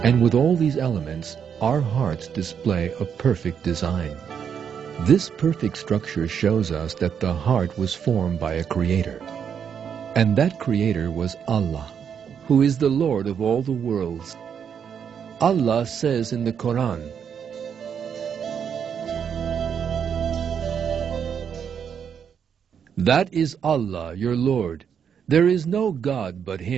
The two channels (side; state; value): left; quieter; 7.6 dB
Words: And with all these elements, our hearts display a perfect design. This perfect structure shows us that the heart was formed by a creator. And that creator was Allah, who is the Lord of all the worlds. Allah says in the Quran, "That is Allah, your Lord. There is no God but